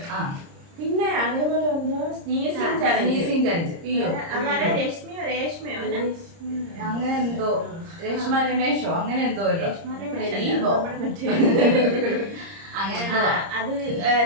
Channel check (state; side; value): late; left; 30 ms